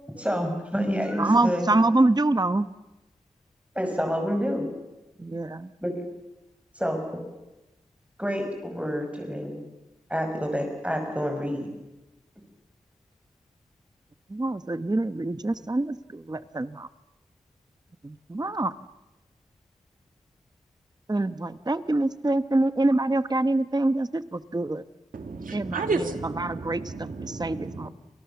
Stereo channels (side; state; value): both; normal; correlation 0.87